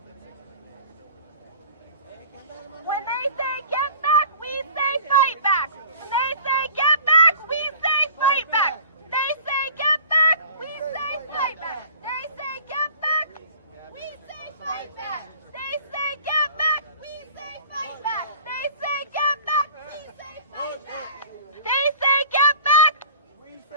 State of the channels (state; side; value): inverted; both; correlation -0.44